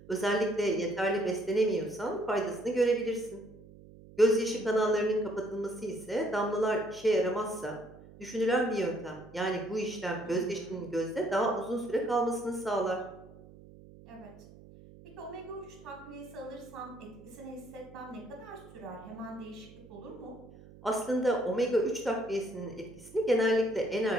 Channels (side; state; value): right; noise; hum, 20 dB below the sound